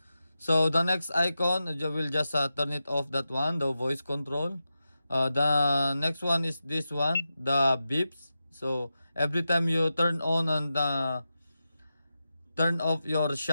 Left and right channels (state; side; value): inverted; both; correlation -0.91